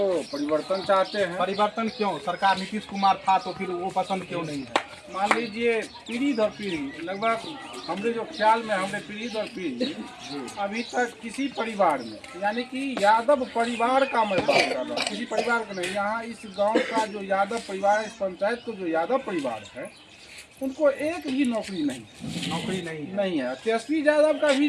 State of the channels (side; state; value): both; identical; correlation 1.00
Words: परिवर्तन चाहते हैं। परिवर्तन क्यों? सरकार नीतीश कुमार था तो फिर वो पसंद क्यों नहीं है? मान लीजिए पीढ़ी दर पीढ़ी लगभग हमारे जो ख्याल में हमारे पीढ़ी दर पीढ़ी अभी तक किसी परिवार में, यानी कि यादव परिवार का मैं बात कर रहा हूँ, किसी परिवार का नहीं, यहाँ इस गांव का जो यादव परिवार है, इस पंचायत को जो यादव परिवार है, उनको एक भी नौकरी नहीं है। तेजस्वी यादव का